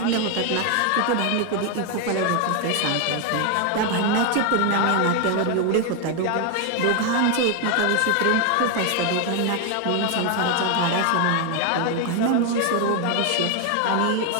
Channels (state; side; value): different; both; correlation 0.01